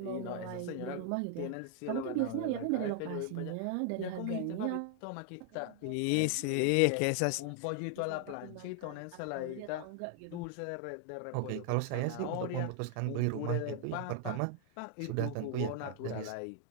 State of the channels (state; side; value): different; both; correlation 0.00